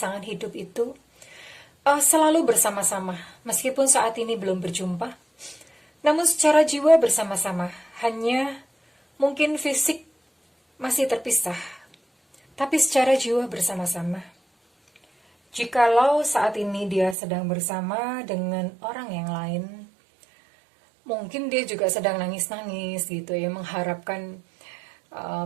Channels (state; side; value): drops out; left; at 17.2 s